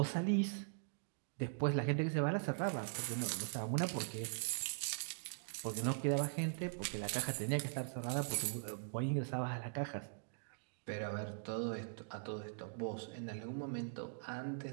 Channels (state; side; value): silent; left; digital silence